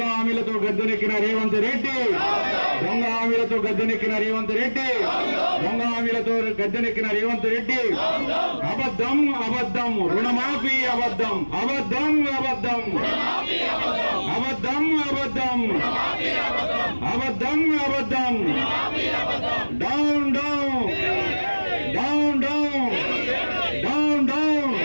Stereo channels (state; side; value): inverted; both; correlation -1.00